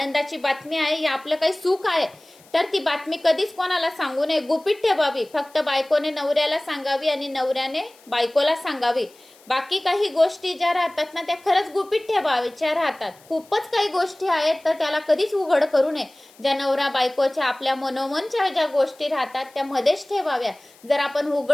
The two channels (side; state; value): left; noise; hiss, 27 dB below the sound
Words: बातमी आहे या आपलं काही सुख आहे तर ती बातमी कधीच कोणाला सांगू नये, गुपित ठेवावी. फक्त बायकोने नवऱ्याला सांगावी आणि नवऱ्याने बायकोला सांगावी. बाकी काही गोष्टी ज्या राहतात ना त्या खरंच गुपित ठेवायच्या राहतात. खूपच काही गोष्टी आहेत तर त्याला कधीच उघड करू नये. ज्या नवरा बायकोच्या आपल्या मनोमनच्या ज्या गोष्टी राहतात त्या मध्येच ठेवाव्या. जर आपण